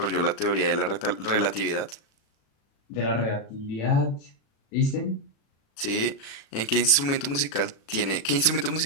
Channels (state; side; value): late; right; 36 ms